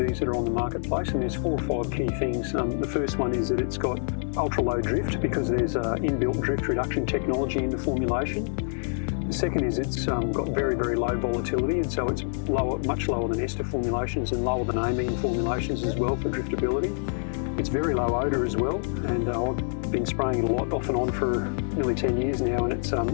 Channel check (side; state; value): right; silent; digital silence